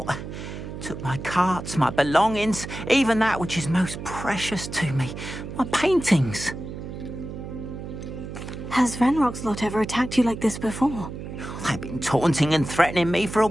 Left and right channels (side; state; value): right; noise; hum, 9 dB below the sound